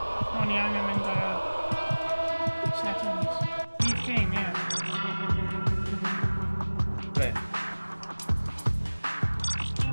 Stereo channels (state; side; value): inverted; both; correlation -1.00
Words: i angen mynd settings. Leave game, yeah. Ble?